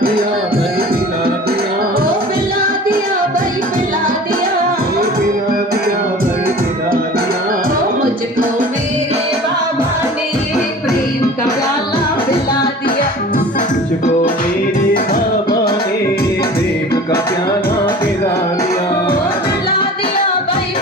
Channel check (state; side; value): normal; both; correlation 0.41